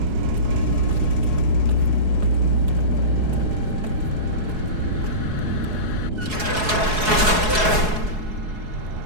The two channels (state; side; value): late; left; 4.7 ms